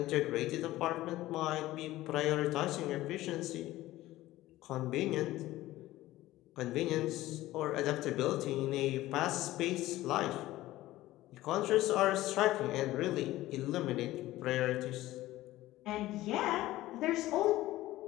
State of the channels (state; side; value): quieter; right; 16.3 dB